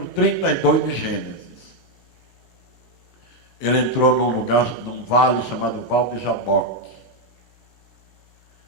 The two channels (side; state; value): right; late; 2.1 ms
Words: 32 de Gênesis, ele entrou num lugar, num vale chamado Val de Jaboque.